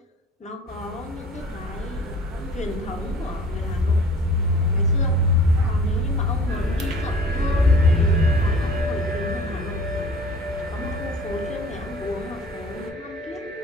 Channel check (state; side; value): normal; both; correlation 0.48